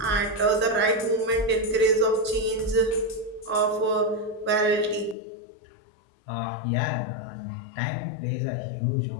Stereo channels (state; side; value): drops out; right; at 5.2 s